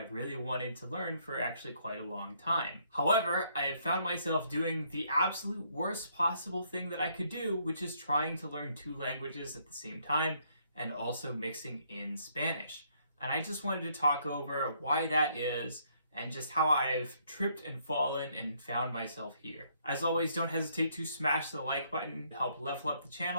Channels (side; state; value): both; inverted; correlation -0.69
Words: really wanted to learn for actually quite a long time. However, I have found myself doing the absolute worst possible thing that I could do, which is trying to learn two languages at the same time and also mixing in Spanish. And I just wanted to talk over why that is and just how I've tripped and fallen and found myself here. As always, don't hesitate to smash the like button to help level up the